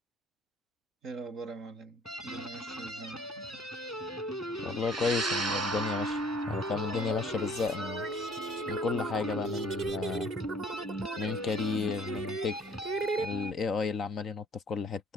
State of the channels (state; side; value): normal; both; correlation 0.55